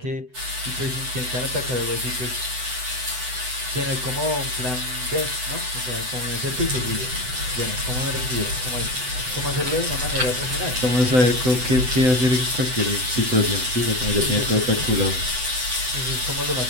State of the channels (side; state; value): left; late; 7.9 ms